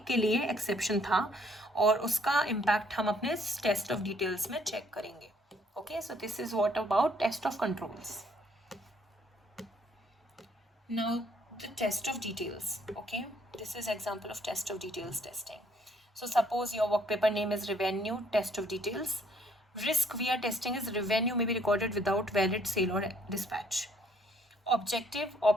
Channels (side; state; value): both; normal; correlation 0.65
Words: के लिए एक्सेप्शन था और उसका इम्पैक्ट हम अपने टेस्ट ऑफ डिटेल्स में चेक करेंगे. Okay, so this is what about test of controls. Now the test of details. Okay, this is example of test of details testing. So suppose your work paper name is revenue test of details. Risk we are testing is revenue may be recorded without valid sale or dispatch. Objective,